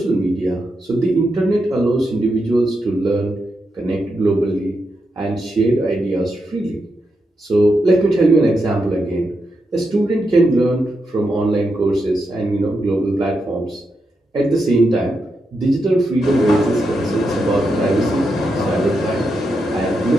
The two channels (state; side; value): normal; both; correlation 0.85